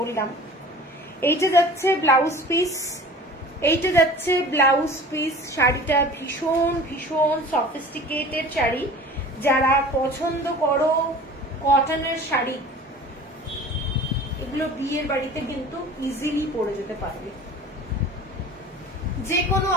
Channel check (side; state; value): both; normal; correlation 0.42